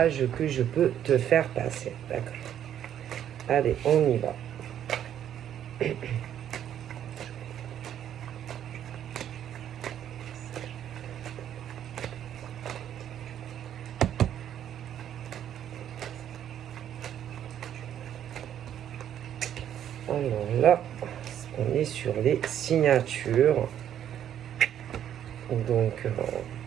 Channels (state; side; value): quieter; left; 10.2 dB